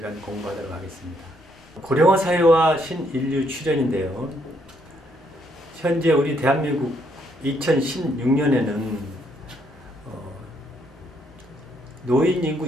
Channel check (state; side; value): normal; both; correlation 0.72